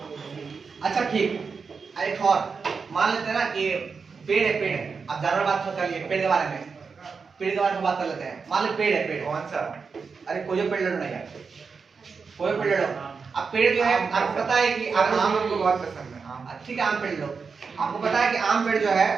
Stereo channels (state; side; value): quieter; left; 5.2 dB